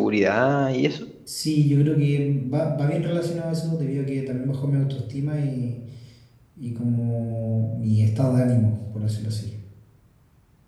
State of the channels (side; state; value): both; identical; correlation 1.00